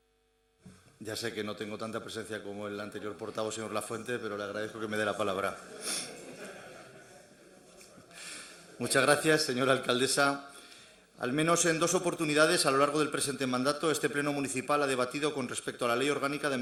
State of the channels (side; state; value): both; identical; correlation 1.00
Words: Ya sé que no tengo tanta presencia como el anterior portavoz, señor Lafuente, pero le agradezco que me dé la palabra. Muchas gracias, señora alcaldesa. Al menos en 2 oportunidades a lo largo del presente mandato, este Pleno Municipal ha debatido con respecto a la Ley Orgánica de